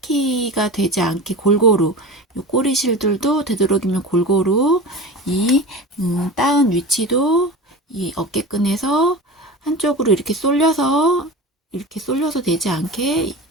되지 않게 골고루, 요 꼬리실들도 되도록이면 골고루 이 따은 위치도 이 어깨끈에서 한쪽으로 이렇게 쏠려서 되지 않게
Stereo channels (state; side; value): normal; both; correlation 0.31